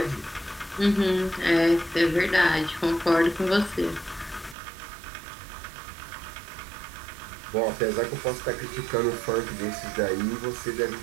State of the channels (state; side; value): drops out; left; at 4.5 s